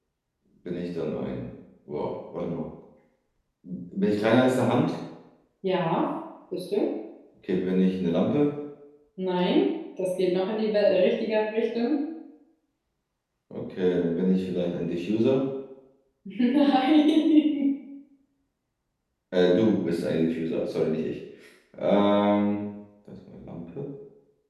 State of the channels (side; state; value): both; identical; correlation 1.00